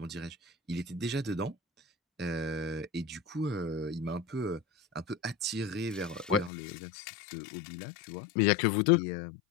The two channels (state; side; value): drops out; right; at 6.5 s